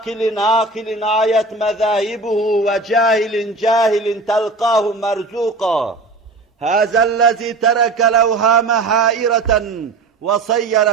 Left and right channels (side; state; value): left; quieter; 3.4 dB